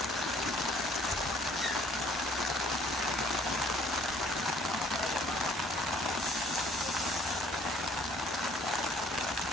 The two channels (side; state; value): both; normal; correlation 0.59